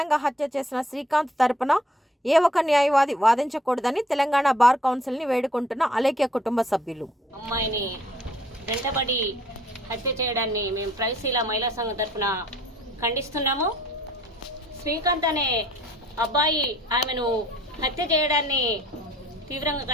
హత్య చేసిన శ్రీకాంత్ తరపున ఏ ఒక్క న్యాయవాది వాదించకూడదని తెలంగాణ బార్ కౌన్సిల్ని వేడుకుంటున్న అలేఖ్య కుటుంబ సభ్యులు. అమ్మాయిని వెంటబడి హత్య చేయడాన్ని మేము ప్రైశీల మహిళా సంఘం తరఫున ఖండిస్తున్నాము. శ్రీకాంత్ అనే అబ్బాయి ఆమెను హత్య చేయడాన్ని తీవ్రంగా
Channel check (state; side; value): normal; both; correlation 0.59